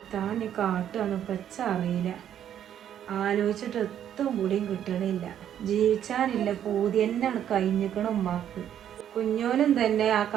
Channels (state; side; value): quieter; left; 10.1 dB